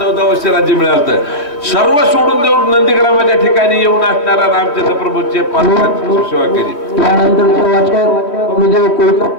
वर्ष राज्य मिळालं. सर्व सोडून देऊन नंदीग्रामाच्या ठिकाणी येऊन असणारा रामचंद्र प्रभूचे सेवा केली. त्यानंतर वाचक गुरुदेव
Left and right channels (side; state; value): right; late; 3.2 ms